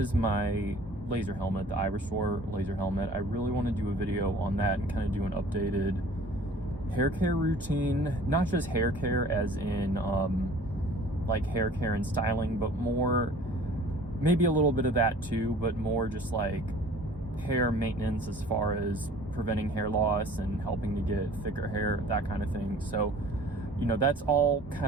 my laser helmet, the Iberstore laser helmet. I really want to do a video on that and kind of do an updated hair care routine, not just hair care as in like hair care and styling, but more, maybe a little bit of that too, but more just like hair maintenance as far as preventing hair loss and helping to get thicker hair, that kind of thing. So, you know, that's all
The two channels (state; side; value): normal; both; correlation 0.49